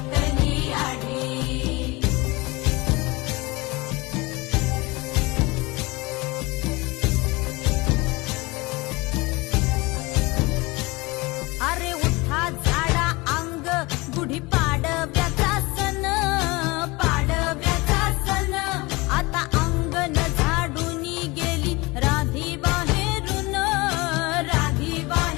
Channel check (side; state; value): right; quieter; 24.0 dB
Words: आढी. अरे उठा झाडा अंग, गुढी पाडव्याचा सण, पाडव्याचा सण. आता अंगण झाडून गेली राधी बाहेरून, राधी